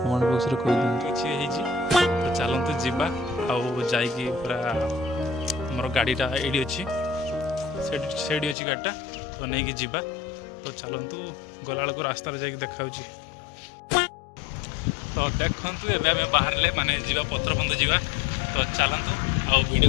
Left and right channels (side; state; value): right; drops out; at 8.6 s